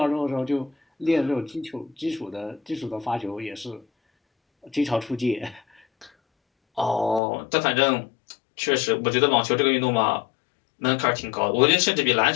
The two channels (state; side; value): drops out; right; at 7.2 s